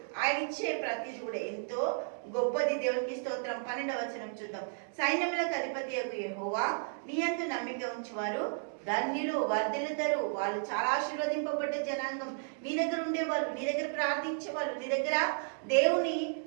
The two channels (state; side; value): silent; left; digital silence